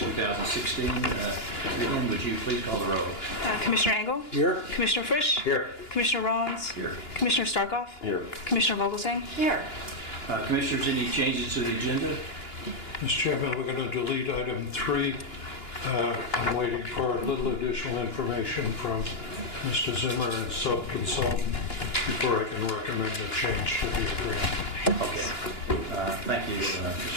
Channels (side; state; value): right; late; 2.9 ms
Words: Lynn, would you please call the roll? Commissioner Engel? Here. Commissioner Frisch? Here. Commissioner Rollins? Here. Commissioner Starkov? Here. Commissioner Vogelsang? Here. Commissioners, any changes to the agenda? Mr. Chairman, we're going to delete item 3. I'm waiting for a little additional information from Mr. Zimmer and sub-consultant before I can recommend a change to the agreement. Okay. Thank you,